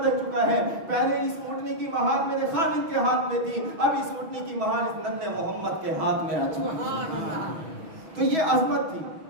چکا ہے. پہلے اس اونٹنی کی مہار میرے خامن کے ہاتھ میں تھی، اب اس اونٹنی کی مہار اس ننھے محمد کے ہاتھ میں آ چکی. تو یہ عظمت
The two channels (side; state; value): left; late; 6.1 ms